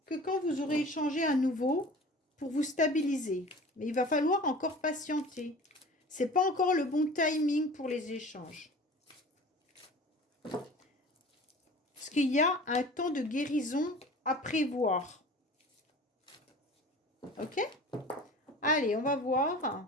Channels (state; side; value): normal; both; correlation 0.41